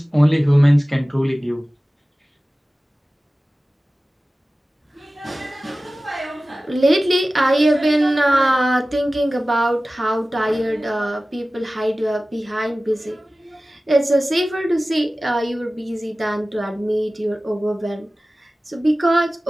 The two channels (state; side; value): normal; both; correlation 0.97